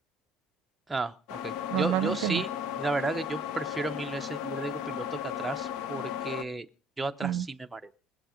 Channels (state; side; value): normal; both; correlation 0.55